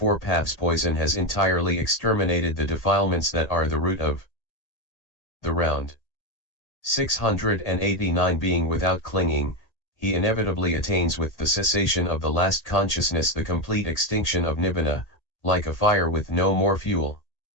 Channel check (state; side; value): late; right; 1.8 ms